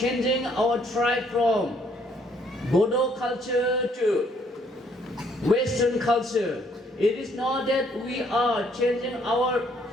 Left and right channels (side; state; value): both; normal; correlation 0.66